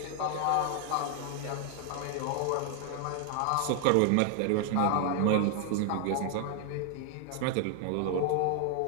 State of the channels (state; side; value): different; both; correlation 0.00